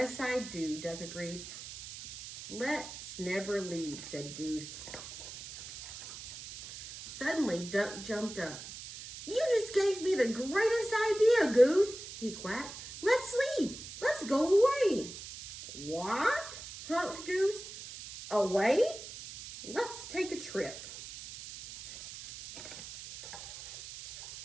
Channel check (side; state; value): right; noise; hiss, 12 dB below the sound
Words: I do, Duck agreed. Let's never leave, said Goose. Suddenly, Duck jumped up. You just gave me the greatest idea, Goose, he quacked. Let's leave. Let's go away. What? Honked Goose. Away? Let's take a trip.